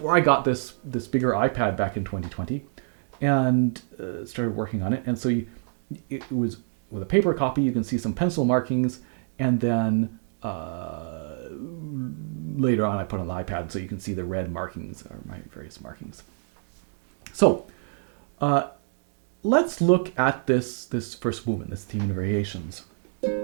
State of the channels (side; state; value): left; silent; 60 dB below the other